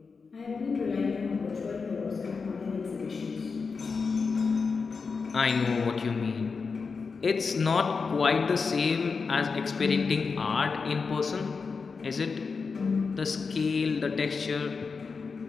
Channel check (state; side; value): quieter; right; 4.9 dB